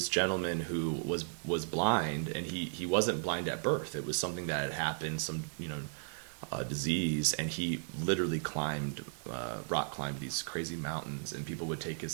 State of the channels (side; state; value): left; silent; digital silence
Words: gentleman who was blind, and he wasn't blind at birth. It was something that had happened, some disease, and he literally rock climbed these crazy mountains, and people would take